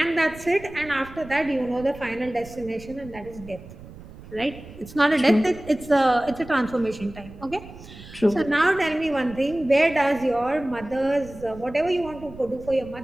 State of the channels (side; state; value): right; noise; rumble, 17 dB below the sound